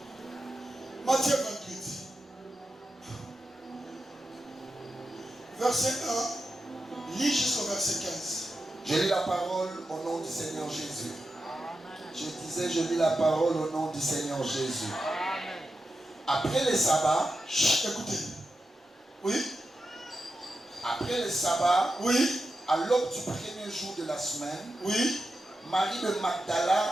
Matthieu 28. Verset 1. Lis jusqu'au verset 15. Je lis la parole au nom du Seigneur Jésus. Je disais, je lis la parole au nom du Seigneur Jésus. Après le sabbat, écoutez. Oui. Après le sabbat, oui. À l'aube du premier jour de la semaine, oui. Marie de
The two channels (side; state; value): both; normal; correlation 0.89